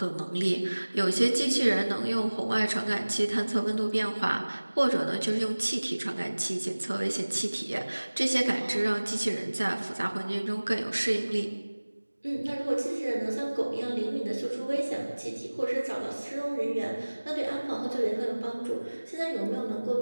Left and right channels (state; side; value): inverted; both; correlation -1.00